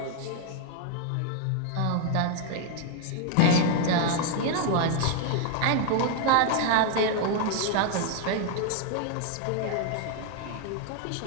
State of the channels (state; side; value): different; both; correlation 0.00